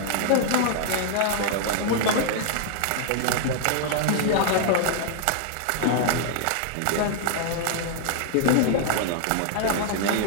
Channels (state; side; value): different; both; correlation 0.00